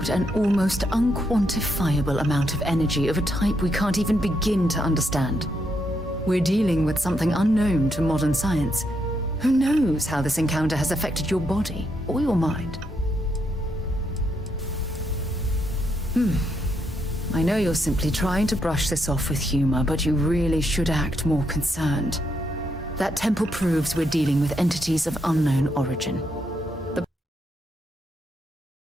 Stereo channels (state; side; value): normal; both; correlation 0.78